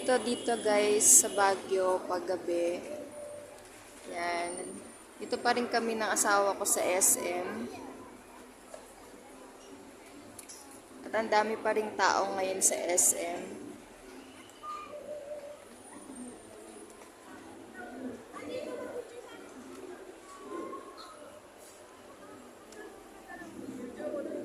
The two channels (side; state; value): both; identical; correlation 1.00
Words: dito guys sa Baguio pag gabi. Yan. Dito pa rin kami ng asawa ko sa SM. At ang dami pa rin tao ngayon sa SM.